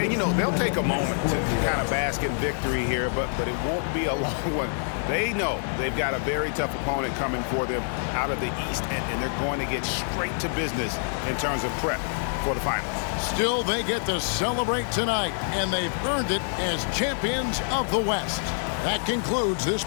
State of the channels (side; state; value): right; silent; digital silence